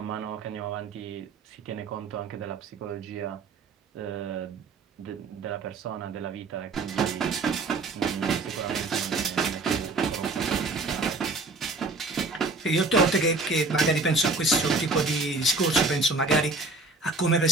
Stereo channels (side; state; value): left; quieter; 3.4 dB